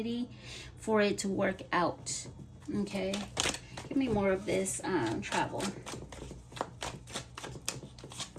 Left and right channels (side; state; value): both; identical; correlation 1.00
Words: for it to work out. Okay? Give me more of this travel.